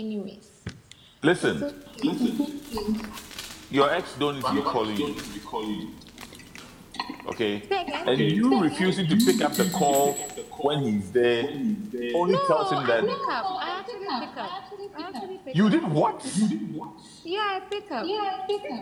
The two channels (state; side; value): identical; both; correlation 1.00